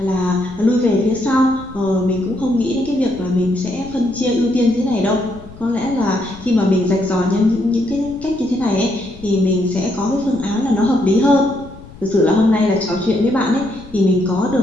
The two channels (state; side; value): noise; left; rumble, 19 dB below the sound